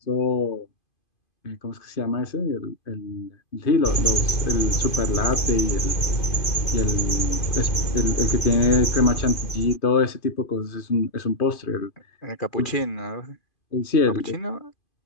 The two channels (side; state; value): right; late; 2.5 ms